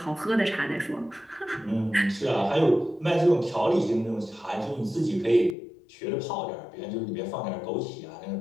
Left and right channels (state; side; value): drops out; right; at 5.6 s